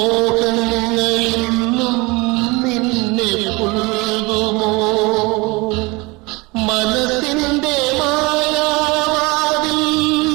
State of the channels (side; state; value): left; quieter; 25.0 dB